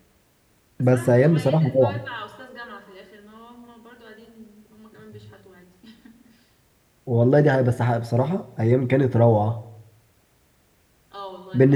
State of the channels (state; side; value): identical; both; correlation 1.00